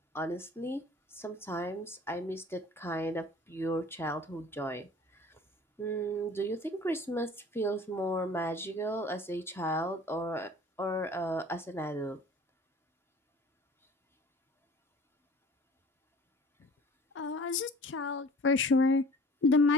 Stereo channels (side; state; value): both; normal; correlation 0.47